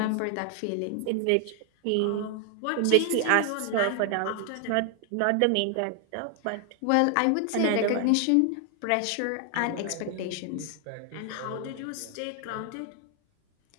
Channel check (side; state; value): both; different; correlation 0.00